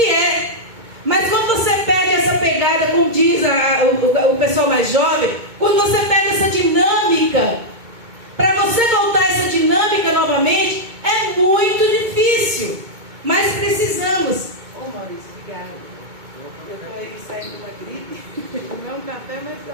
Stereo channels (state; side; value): late; left; 2.2 ms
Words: é. Mas quando você perde essa pegada, como diz o pessoal mais jovem, quando você perde essa dinâmica, para você voltar a essa dinâmica novamente, é muito difícil. Mas precisamos. Ô Maurício, obrigada. Eu estou aí saindo de uma gripe. Tomei um café, mas a